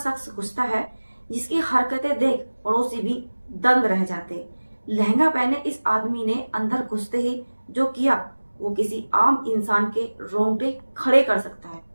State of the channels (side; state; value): both; inverted; correlation -1.00